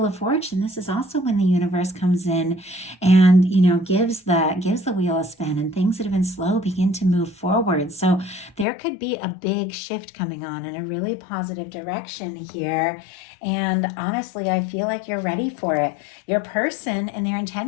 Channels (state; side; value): drops out; right; at 8.7 s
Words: of Fortune, this is also when the universe comes in and, gives the wheel a spin, and things that have been slow begin to move forward. So there could be a big shift coming on in a really positive direction here. And honestly, I feel like you're ready for it. Your person and their